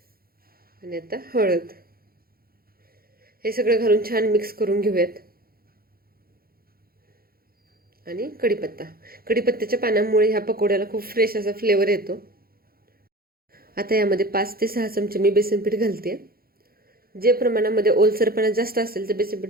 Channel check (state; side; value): late; left; 0.43 ms